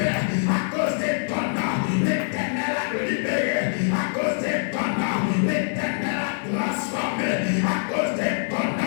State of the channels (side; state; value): right; silent; digital silence